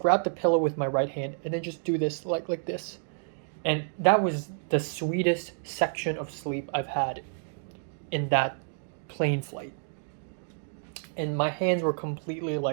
the pillow with my right hand and then just do this like this. And that was the sweetest section of sleep I've had in that plane flight. And my hands were completely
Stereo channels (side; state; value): left; silent; digital silence